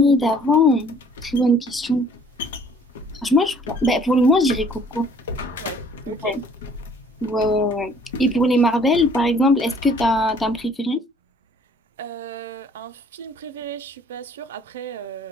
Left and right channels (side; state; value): both; normal; correlation 0.56